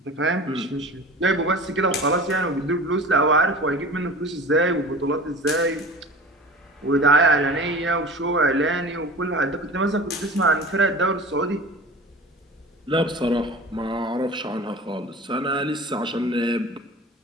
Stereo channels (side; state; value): both; normal; correlation 0.37